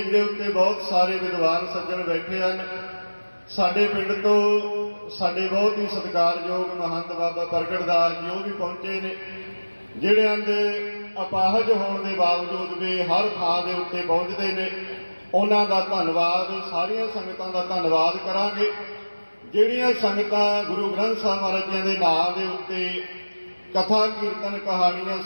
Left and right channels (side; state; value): both; inverted; correlation -1.00